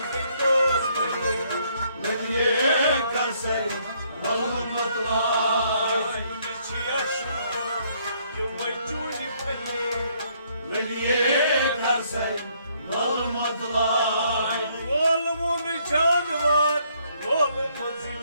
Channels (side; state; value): both; inverted; correlation -0.68